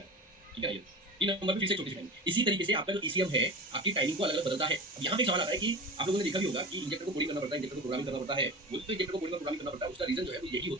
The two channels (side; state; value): both; normal; correlation 0.31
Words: है। ठीक है, ये 3 नंबर पे फिर से छोटी सी टाइमिंग। इसी तरीके से आपका जो ईसीएम है आपकी टाइमिंग को अलग अलग बदलता है। अब यहाँ पे सवाल आता है कि आप लोगों ने देखा भी होगा कि इंजेक्टर को कोडिंग करना पड़ता है, इंजेक्टर को प्रोग्रामिंग करना पड़ता है। वो तो इंजेक्टर को कोडिंग और प्रोग्रामिंग करना पड़ता है, उसका रीजन जो है वो यही